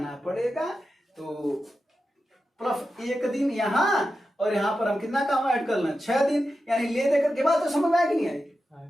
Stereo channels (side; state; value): both; normal; correlation 0.91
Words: पड़ेगा, तो प्लस 1 दिन यहां, और यहां पर हम कितना काम ऐड कर लें 6 दिन, यानी ले देकर के बाद तो समझ में आया कि नहीं आएगी